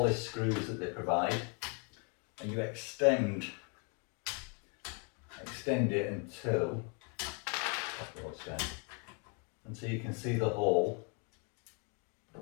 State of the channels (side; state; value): right; quieter; 37.2 dB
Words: screws that they provide, and you extend it until you can see the hole.